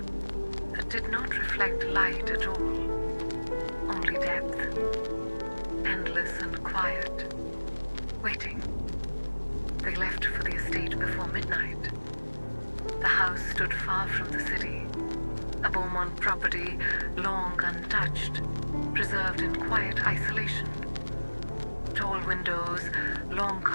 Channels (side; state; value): both; inverted; correlation -1.00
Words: that did not reflect light at all, only depth, endless and quiet, waiting. They left for the estate before midnight. The house stood far from the city, a Beaumont property long untouched, preserved in quiet isolation. Tall windows, long